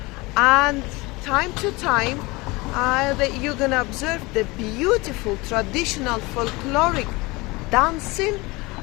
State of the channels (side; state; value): right; quieter; 23.6 dB